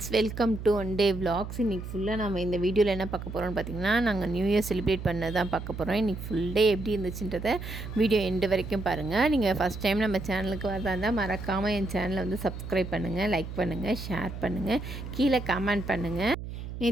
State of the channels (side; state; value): right; noise; hum, 9 dB below the sound